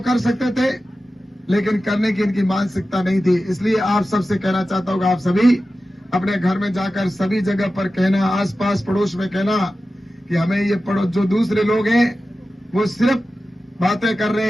कर सकते थे, लेकिन करने की इनकी मानसिकता नहीं थी। इसलिए आप सबसे कहना चाहता हूं कि आप सभी अपने घर में जाकर सभी जगह पर कहना, आसपास पड़ोस में कहना कि हमें ये पड़ोस जो दूसरे लोग हैं वो सिर्फ बातें कर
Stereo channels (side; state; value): both; normal; correlation 0.94